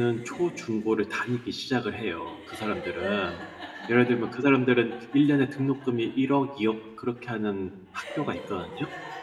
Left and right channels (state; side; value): identical; both; correlation 1.00